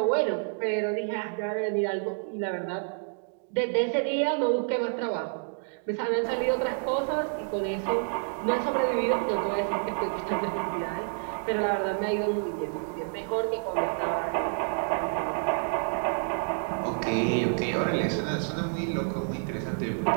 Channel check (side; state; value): left; silent; 59 dB below the other